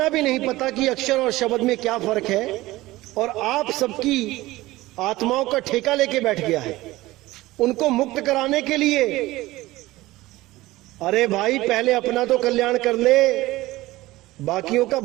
भी नहीं पता कि अक्षर और शब्द में क्या फर्क है, और आप सबकी आत्माओं का ठेका लेके बैठ गया है उनको मुक्त कराने के लिए। अरे भाई, पहले अपना तो कल्याण कर ले, बाकियों का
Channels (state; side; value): quieter; left; 18.2 dB